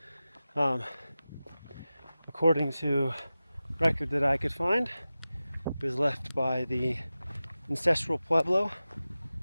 According to record that I could find, it was left by the Ancestral Pueblo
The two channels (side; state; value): both; inverted; correlation -0.95